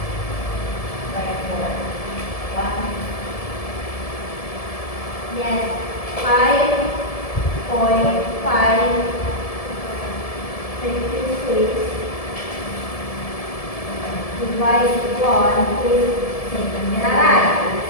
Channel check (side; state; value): right; late; 1.7 ms